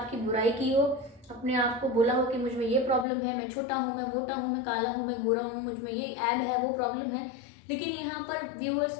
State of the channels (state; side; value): drops out; right; at 3.1 s